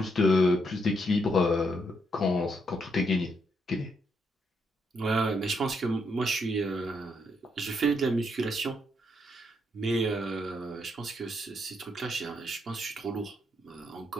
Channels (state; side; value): normal; both; correlation 0.77